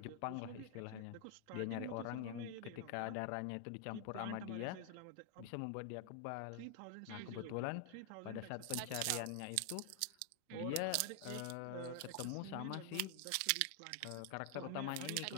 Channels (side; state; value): both; different; correlation 0.00